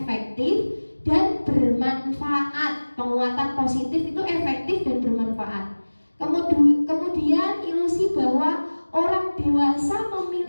dan bermanfaat. Penguatan positif itu efektif dan bermanfaat. Kemudian ilusi bahwa orang dewasa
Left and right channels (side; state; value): both; inverted; correlation -1.00